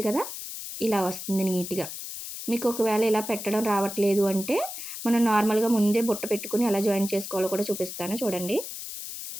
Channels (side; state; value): left; noise; hiss, 9 dB below the sound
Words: కదా! ఇలా వస్తుంది నీట్‌గా. మీకు ఒకవేళ ఇలా పెట్టడం రావట్లేదు అంటే, మనం నార్మల్‌గా ముందే బుట్ట పెట్టుకొని ఎలా జాయిన్ చేసుకోవాలో కూడా చూపిస్తాను చూడండి.